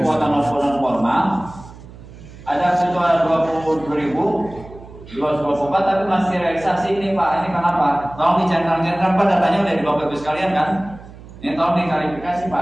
non formal ada sekitar 22.224 tapi masih realisasi ini Pak. Ini kenapa? Tolong dicentang-centang Pak, datanya udah di Bapak Ibu sekalian kan? Ini tolong diklarifikasi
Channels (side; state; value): right; noise; hum, 18 dB below the sound